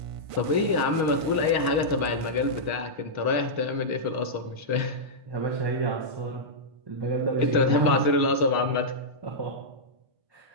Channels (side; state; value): left; late; 1.5 ms